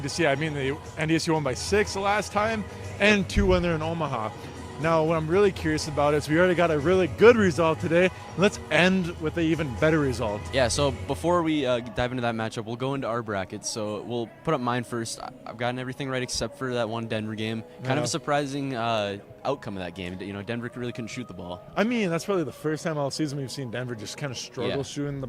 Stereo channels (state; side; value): identical; both; correlation 1.00